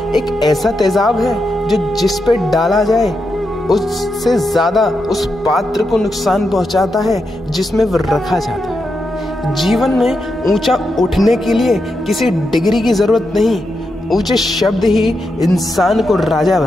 एक ऐसा तेजाब है जो जिस पे डाला जाए उससे ज्यादा उस पात्र को नुकसान पहुंचाता है जिसमें वो रखा जाता है। जीवन में ऊंचा उठने के लिए किसी डिग्री की जरूरत नहीं, ऊंचे शब्द ही इंसान को राजा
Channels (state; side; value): normal; both; correlation 0.85